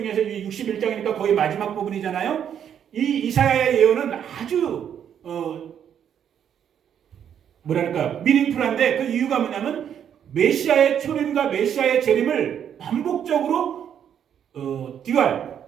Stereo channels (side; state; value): left; quieter; 8.9 dB